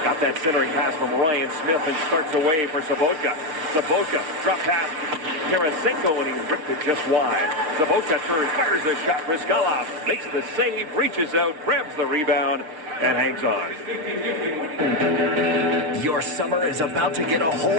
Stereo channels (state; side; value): late; left; 6.6 ms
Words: got that centering pass from Ryan Smith and starts away for Sobotka. Sobotka drop pass Tarasenko, and he ripped it just wide. Sobotka turns, fires a shot. Brizgalov makes the save, reaches out, grabs the rebound, and hangs on. Your summer is about to get a